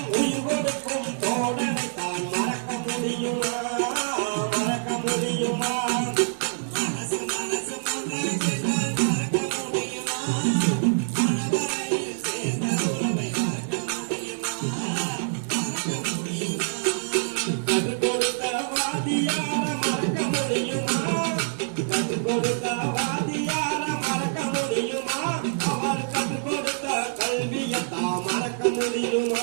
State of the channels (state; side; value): silent; left; digital silence